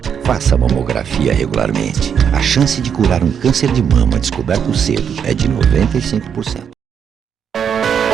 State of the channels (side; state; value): left; quieter; 7.7 dB